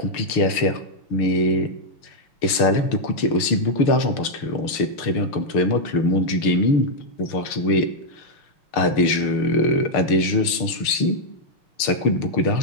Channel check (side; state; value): right; late; 6.6 ms